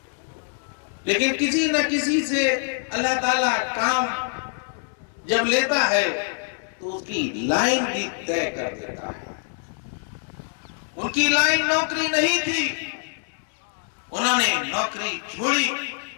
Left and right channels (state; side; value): silent; right; 62 dB below the other